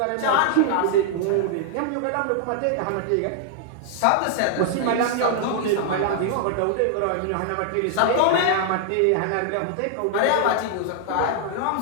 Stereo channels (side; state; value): both; different; correlation -0.01